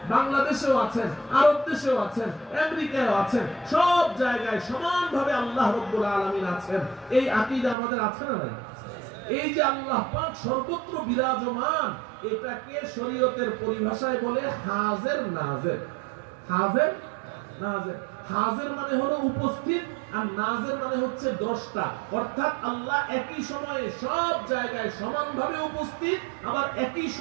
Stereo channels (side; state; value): left; drops out; at 7.8 s